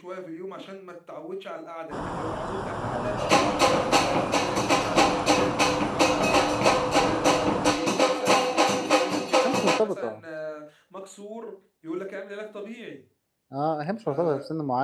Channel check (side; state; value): both; identical; correlation 1.00